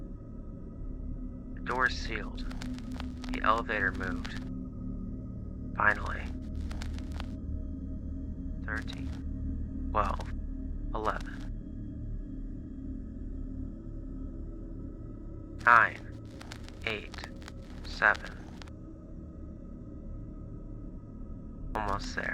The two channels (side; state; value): both; identical; correlation 1.00